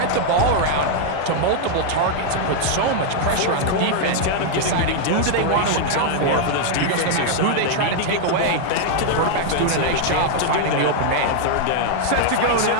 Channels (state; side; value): different; both; correlation 0.00